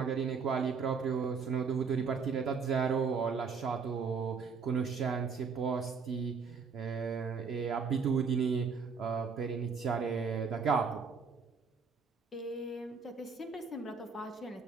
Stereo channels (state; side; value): quieter; left; 5.5 dB